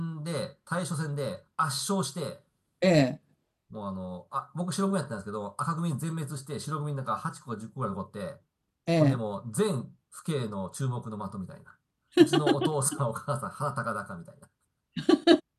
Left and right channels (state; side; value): identical; both; correlation 1.00